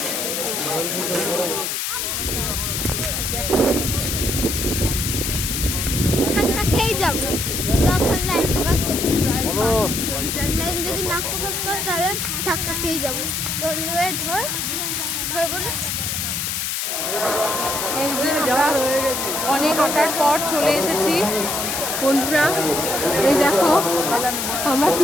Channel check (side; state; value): left; noise; hiss, 1 dB below the sound